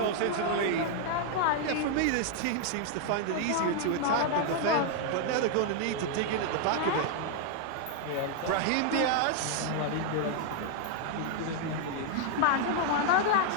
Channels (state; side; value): different; both; correlation 0.00